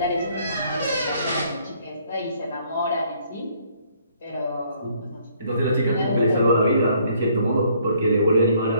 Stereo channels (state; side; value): inverted; both; correlation -0.64